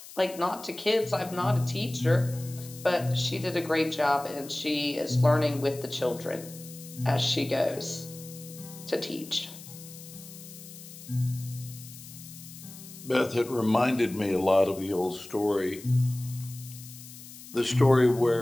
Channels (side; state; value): left; noise; hiss, 16 dB below the sound